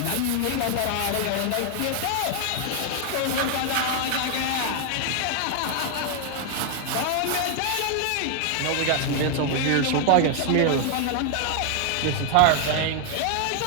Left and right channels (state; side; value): different; both; correlation 0.00